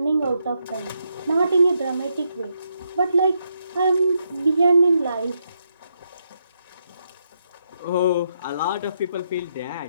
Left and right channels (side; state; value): both; inverted; correlation -0.80